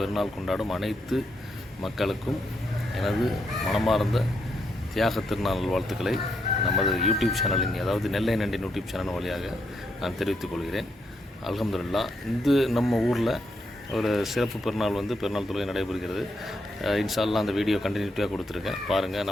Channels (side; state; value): both; normal; correlation 0.79